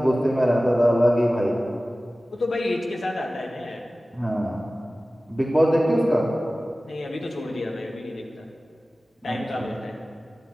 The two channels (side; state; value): both; normal; correlation 0.96